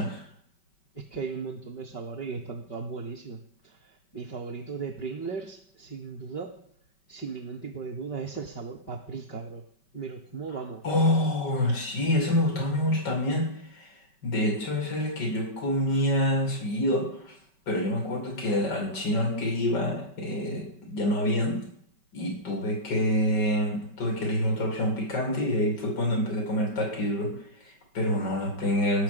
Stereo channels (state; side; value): late; right; 5.2 ms